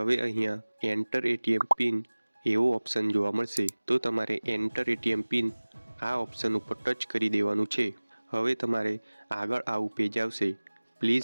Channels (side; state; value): both; inverted; correlation -1.00